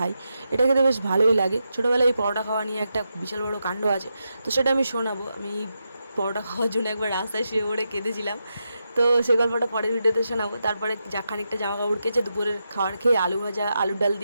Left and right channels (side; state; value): both; inverted; correlation -0.86